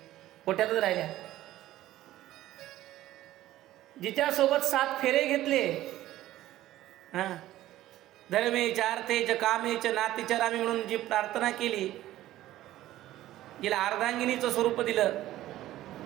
कोट्यातच राहिल्या. जिच्यासोबत 7 फेरे घेतले, धर्मेच अर्थेच कामेच नातीचरामी म्हणून जी प्रार्थना केली, जिला अर्धांगिनीचं स्वरूप दिलं,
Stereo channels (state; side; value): quieter; left; 14.6 dB